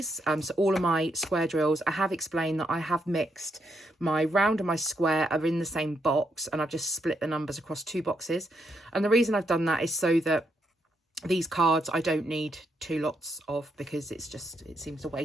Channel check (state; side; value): normal; both; correlation 0.78